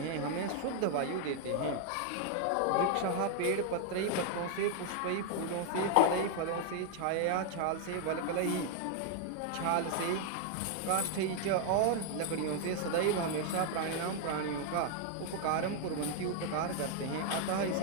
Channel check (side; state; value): both; different; correlation 0.00